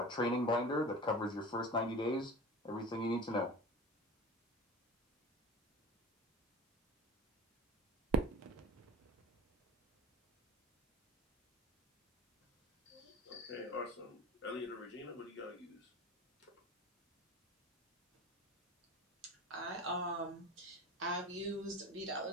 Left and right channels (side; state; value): both; normal; correlation 0.34